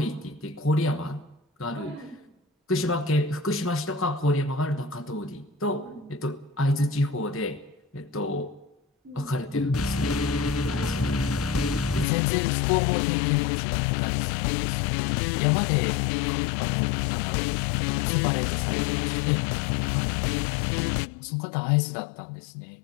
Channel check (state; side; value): drops out; right; at 12.1 s